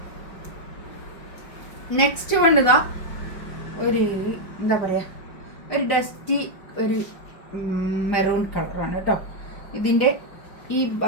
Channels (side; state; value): right; late; 5.0 ms